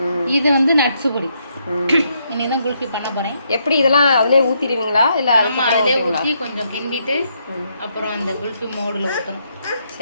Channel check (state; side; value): inverted; both; correlation -0.76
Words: இது வந்து நட்ஸு பொடி. இன்னைக்கு தான் குல்ஃபி பண்ண போகிறேன். எப்படி இதெல்லாம் அதிலே ஊற்றிடுவீங்களா இல்லை? ஆமாம், அதிலே ஊற்றி கொஞ்சம் கிண்டிட்டு அப்புறம் அந்த குல்ஃபி மோடில் ஊற்றணும்.